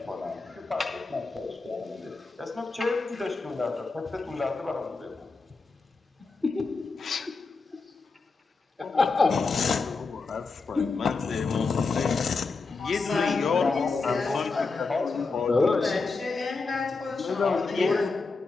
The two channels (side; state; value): right; quieter; 4.1 dB